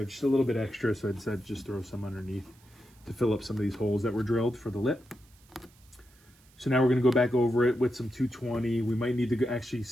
just a little bit extra, so I decided to just throw some underneath to fill up some of these holes that were drilled for the lip. So now we're going to go back over it with some 220. We might need to actually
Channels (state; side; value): noise; right; hiss, 29 dB below the sound